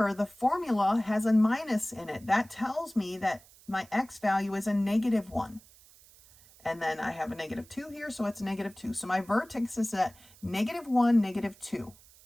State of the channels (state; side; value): noise; right; hiss, 25 dB below the sound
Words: the formula has a minus in it. That tells me that my x value is a negative 1. And then I have a negative 2 here, so it's negative 2. So my vertex is at negative 1, negative 2.